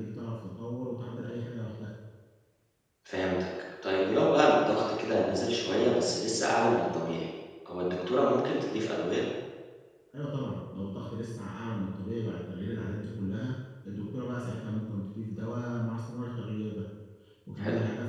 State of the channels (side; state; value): both; identical; correlation 1.00